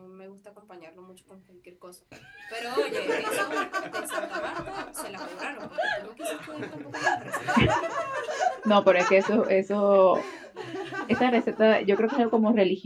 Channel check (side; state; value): both; identical; correlation 1.00